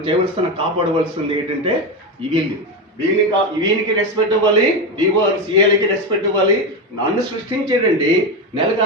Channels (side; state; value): both; normal; correlation 0.15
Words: చేయవలసిన కాపాడవలసింది ఏంటంటే వీనికి రెస్పెక్ట్ ఇవ్వాలి, డిఓ సిఎల్ఐకి రెస్పెక్ట్ ఇవ్వాలి. నన్ను సృష్టించేటండి నెలకు